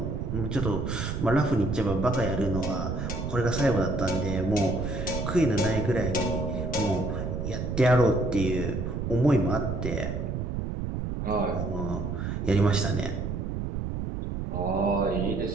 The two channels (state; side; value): noise; right; rumble, 3 dB below the sound